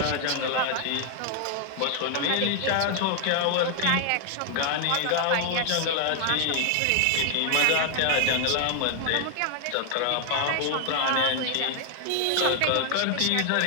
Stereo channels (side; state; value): both; different; correlation 0.00